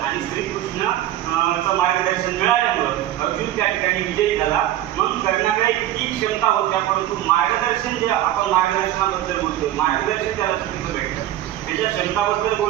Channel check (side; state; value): left; quieter; 13.1 dB